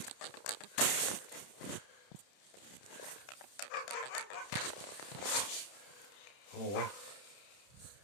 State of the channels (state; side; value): late; right; 31 ms